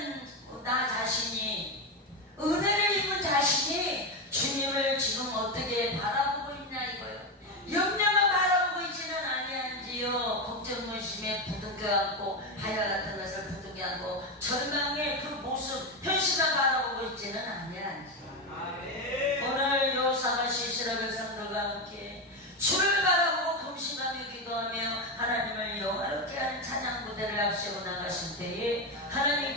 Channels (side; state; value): both; normal; correlation 0.12